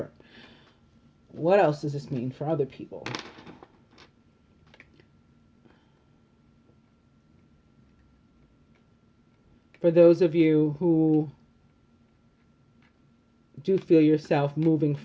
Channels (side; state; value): both; identical; correlation 1.00